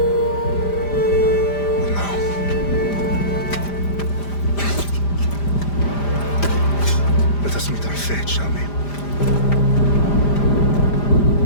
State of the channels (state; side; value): late; right; 5.0 ms